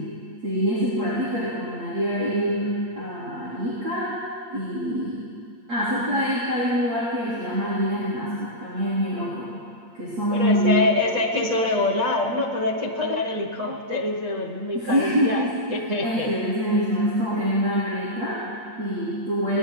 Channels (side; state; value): left; late; 8.6 ms